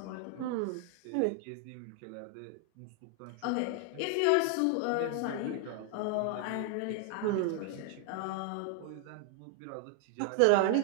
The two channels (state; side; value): different; both; correlation 0.00